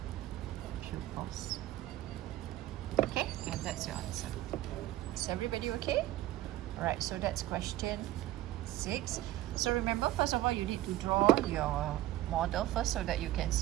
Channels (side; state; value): left; quieter; 15.2 dB